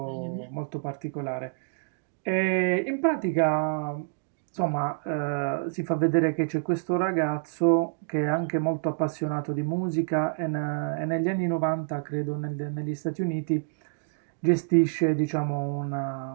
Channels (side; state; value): left; silent; digital silence